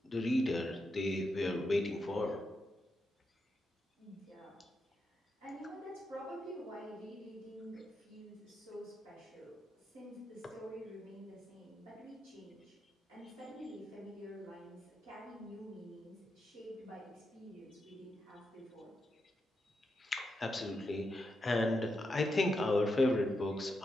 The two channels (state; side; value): normal; both; correlation 0.85